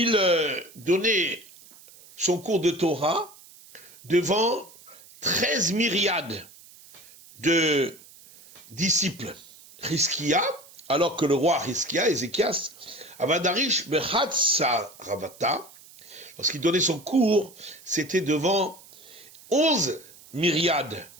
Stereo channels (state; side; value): noise; right; hiss, 22 dB below the sound